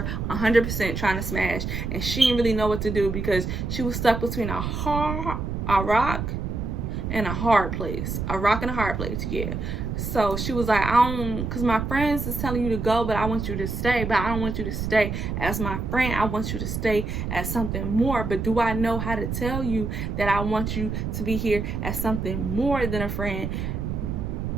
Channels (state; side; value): noise; right; rumble, 3 dB below the sound